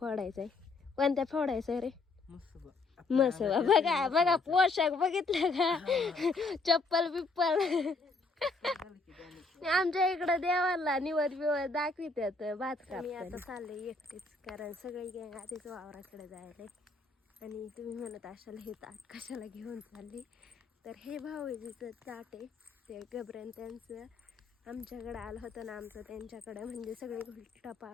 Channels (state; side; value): quieter; right; 3.7 dB